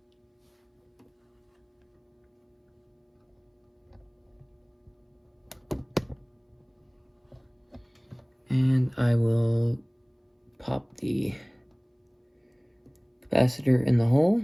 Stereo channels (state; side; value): identical; both; correlation 1.00